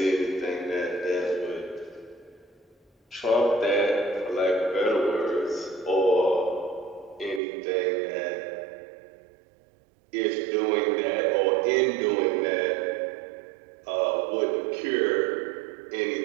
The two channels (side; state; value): left; drops out; at 7.4 s